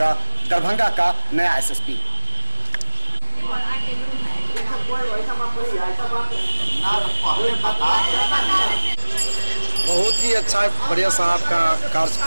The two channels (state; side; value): inverted; both; correlation -1.00